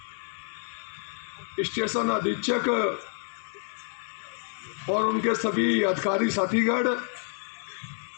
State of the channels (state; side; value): silent; right; 59 dB below the other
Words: स्टेशन अधीक्षक और उनके सभी अधिकारी साथीगण,